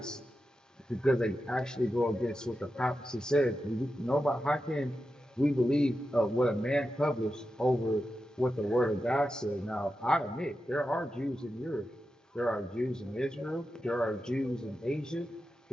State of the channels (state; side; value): normal; both; correlation 0.90